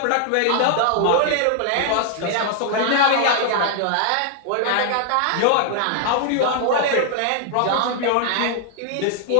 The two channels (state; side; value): different; both; correlation 0.00